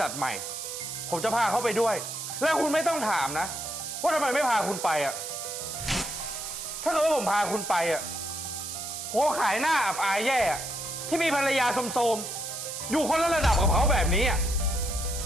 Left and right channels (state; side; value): noise; right; hiss, 7 dB below the sound